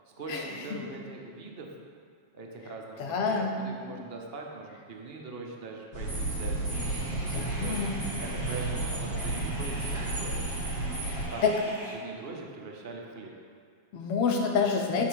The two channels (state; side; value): late; right; 7.4 ms